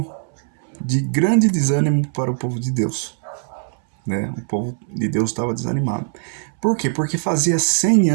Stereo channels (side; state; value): left; silent; 64 dB below the other